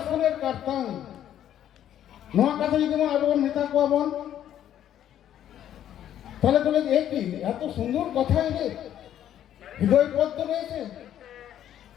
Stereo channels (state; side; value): quieter; right; 10.9 dB